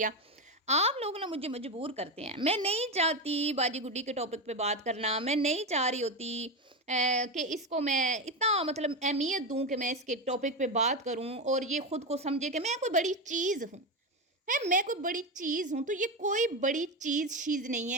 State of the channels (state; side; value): normal; both; correlation 0.15